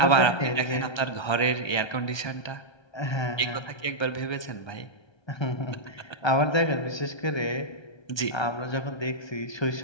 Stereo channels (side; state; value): right; late; 1.3 ms